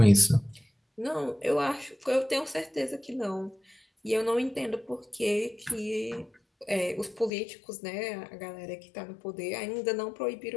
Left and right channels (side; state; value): right; drops out; at 7.3 s